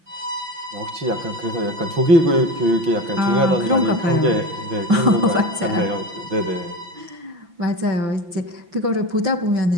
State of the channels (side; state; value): left; late; 5.9 ms